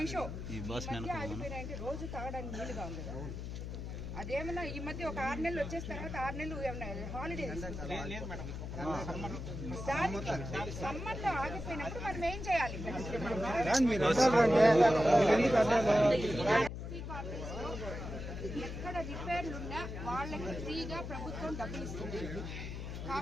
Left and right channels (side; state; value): left; noise; hum, 7 dB below the sound